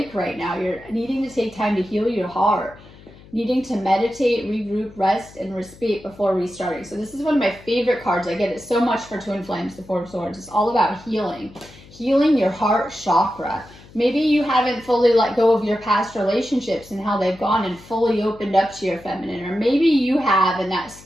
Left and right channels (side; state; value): left; noise; hum, 22 dB below the sound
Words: right now. You're needing to take time to heal your heart, needing to meditate, regroup, rest, and respite before restarting. So this is one of my favorite cards. I get it so much for twin flames, the Four of Swords. It's all about healing your heart chakra. Maybe you haven't fully let go of your past relationships and how they've gone and fully opened up to your feminine, or maybe you have and that